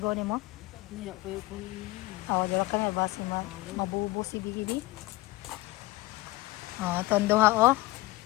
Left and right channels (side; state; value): right; quieter; 19.4 dB